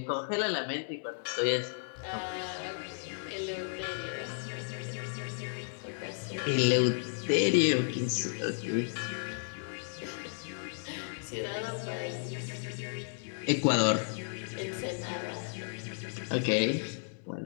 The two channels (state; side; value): silent; right; 55 dB below the other